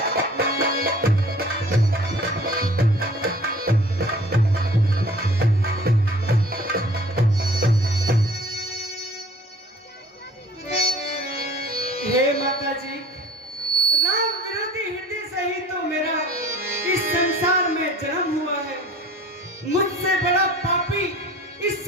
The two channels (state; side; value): normal; both; correlation 0.48